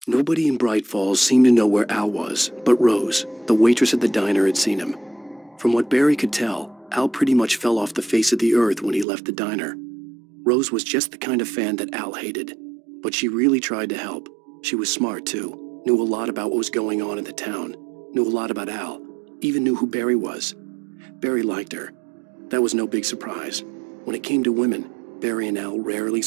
Nobody in Bright Falls seemed to know where Al was, but Rose, the waitress at the diner, had seen him. From what Barry could tell, Al pretty much fell off the face of the earth when he left the diner. Rose was just the kind of fan that Al hated, but she really tried to help. She was smart, too, knew a lot about what was going on in the town, knew a lot about Al, even knew who Barry was. Barry liked her. That was no big surprise. When it came to women, Barry and Al rarely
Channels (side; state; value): left; drops out; at 9.1 s